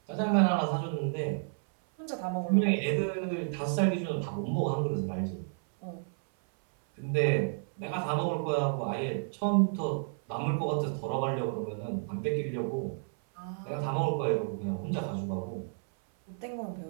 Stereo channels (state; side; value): silent; left; 57 dB below the other